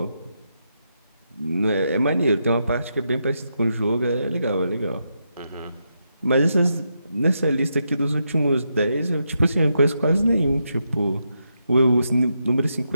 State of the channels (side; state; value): both; inverted; correlation -0.83